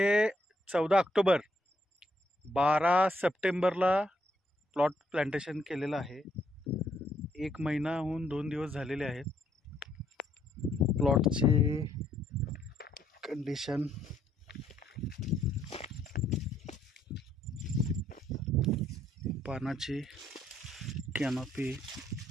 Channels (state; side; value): normal; both; correlation 0.71